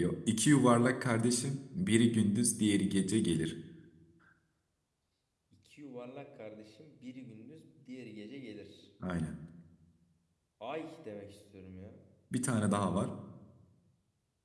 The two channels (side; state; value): both; identical; correlation 1.00